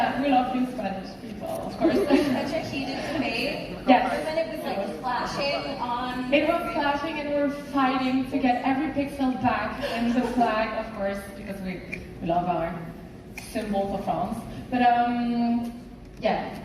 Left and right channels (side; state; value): both; identical; correlation 1.00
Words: we love you Spanish people, of course. Such a heated debate. Yes. And then it was like flashing on. It was flashing and we were fighting to get every pixel back and the flag, of course, because we love our symbol for France. But yeah,